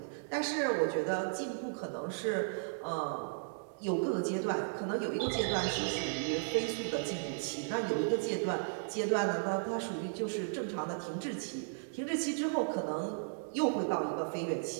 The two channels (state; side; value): silent; left; digital silence